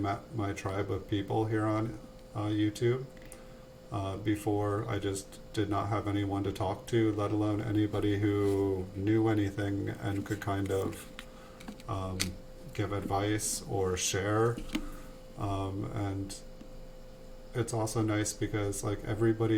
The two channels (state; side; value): identical; both; correlation 1.00